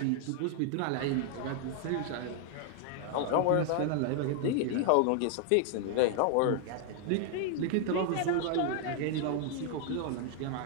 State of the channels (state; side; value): different; both; correlation 0.00